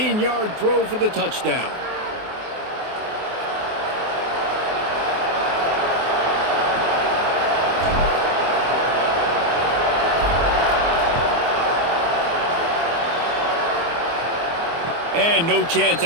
throw for the touchdown. And no chance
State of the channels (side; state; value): left; late; 24 ms